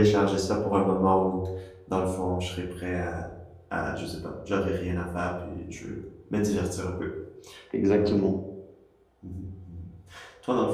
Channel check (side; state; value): both; identical; correlation 1.00